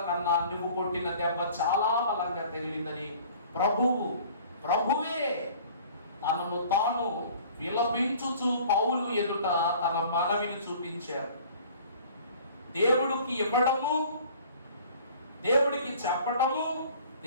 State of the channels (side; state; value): both; inverted; correlation -0.49